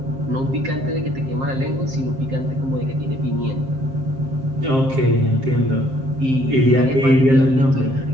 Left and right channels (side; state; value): left; late; 7.6 ms